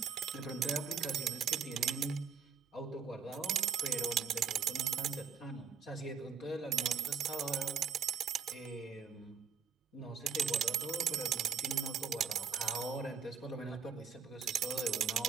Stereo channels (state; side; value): quieter; left; 6.8 dB